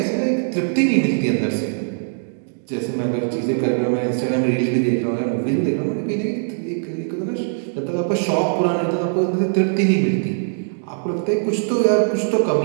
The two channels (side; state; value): left; silent; digital silence